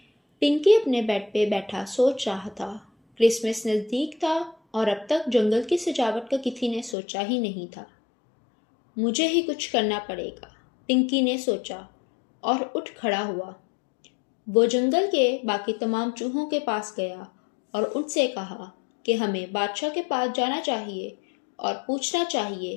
पिंकी अपने बेड पे बैठा सोच रहा था। क्रिसमस नज़दीक था और अब तक जंगल की सजावट का किसी ने सोचा ही नहीं था। मुझे ही कुछ करना पड़ेगा, पिंकी ने सोचा और उठ खड़ा हुआ। वो जंगल के बाकी तमाम चूहों के पास गया और उनसे कहा कि हमें बादशाह के पास जाना चाहिए और पूछना चाहिए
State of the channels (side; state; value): right; drops out; at 7.0 s